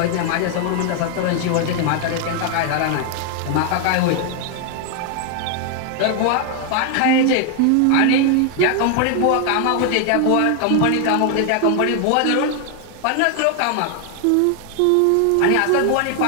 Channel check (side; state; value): both; different; correlation 0.00